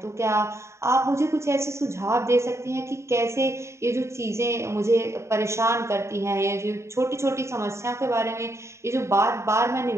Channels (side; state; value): left; late; 0.14 ms